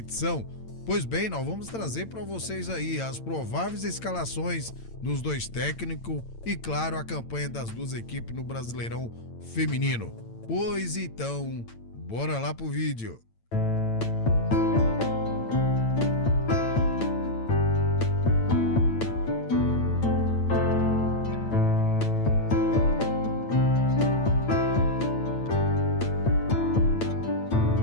Pois bem, nós vamos trazer para vocês aí as prováveis escalações dos dois técnicos e, claro, a campanha das duas equipes no Brasileirão Feminino. Pois então, bora lá pro vídeo.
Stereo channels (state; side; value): late; right; 8.9 ms